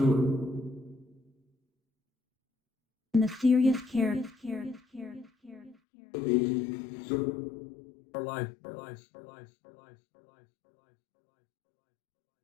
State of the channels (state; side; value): drops out; right; at 5.8 s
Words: And the serious care. Our life.